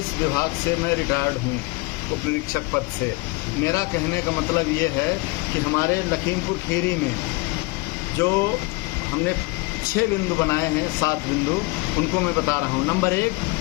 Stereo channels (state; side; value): quieter; right; 24.7 dB